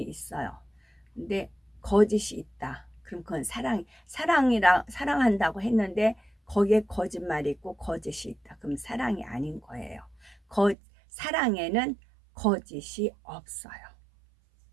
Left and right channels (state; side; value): drops out; left; at 10.8 s